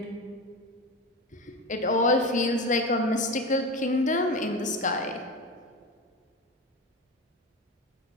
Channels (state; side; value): normal; both; correlation 0.24